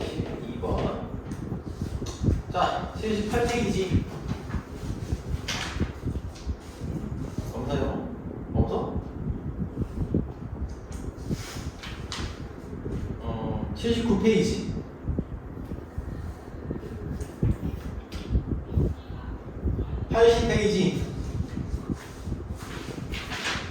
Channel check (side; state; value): both; identical; correlation 1.00